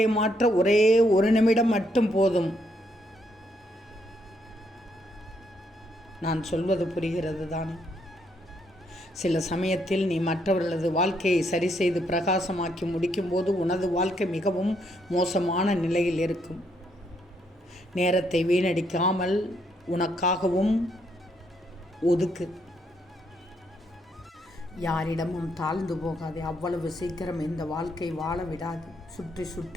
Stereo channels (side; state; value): both; normal; correlation 0.74